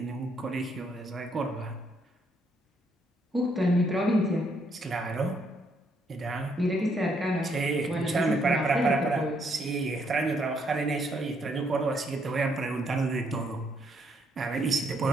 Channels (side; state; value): both; normal; correlation 0.72